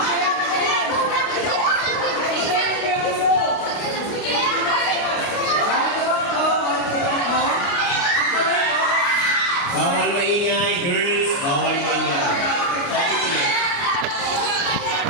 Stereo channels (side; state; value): right; late; 29 ms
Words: Bawal maingay, girls. Bawal maingay.